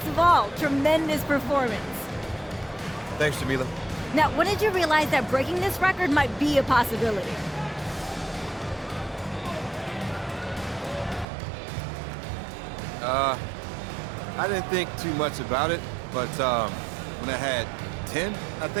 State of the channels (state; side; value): drops out; left; at 11.2 s